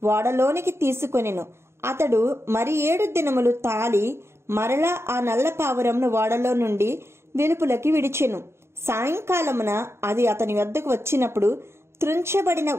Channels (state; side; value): late; left; 0.13 ms